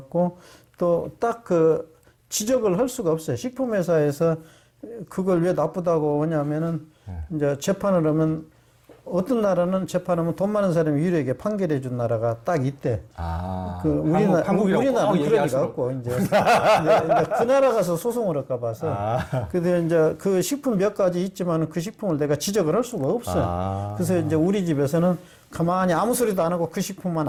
또 딱 그 지적을 할 수가 없어요. 식품회사에서 그걸 왜 나쁘다고 하냐면은 이제 재판을 하면 어떤 나라는 재판하면 돈 많은 사람이 유리하게 판결해 준 나라가 딱 있대. 그 우리나라는 그런 리가 없고 이제 그 나라 가서 소송을 할까 봐서. 근데 이제 그 식품 몇 가지 있지만 그 식품을 내가 지적을 할 수가 없어요. 그래서 이제 우리 집에서는 가만히 아무 소리도 안 하고 그 식품만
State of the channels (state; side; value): identical; both; correlation 1.00